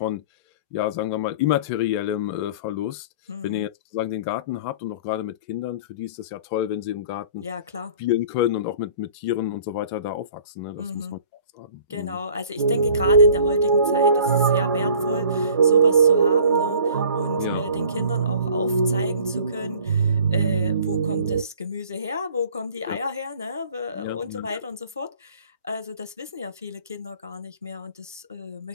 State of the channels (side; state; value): both; inverted; correlation -0.49